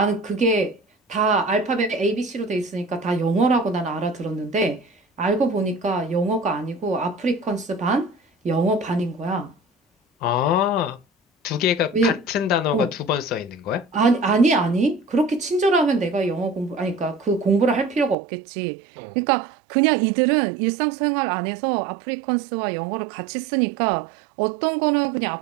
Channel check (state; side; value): drops out; left; at 18.2 s